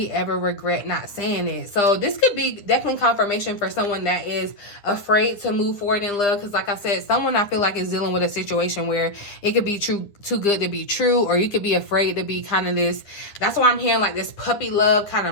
ever regret not saying it. So this could be definitely confirmation for someone that is afraid to move forward in love. Because like I said, someone I feel like is dealing with a situation where it could be too good to be true, or you could be afraid to be kind of this. That's why I'm hearing like this puppy love, kind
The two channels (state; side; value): late; right; 9.9 ms